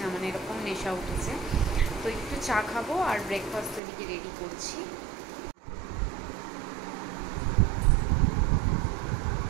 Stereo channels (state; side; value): drops out; left; at 3.8 s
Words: না, এরকম নেশা উঠেছে। তো একটু চা খাবো আর ব্রেকফাস্ট এদিকে রেডি করছি।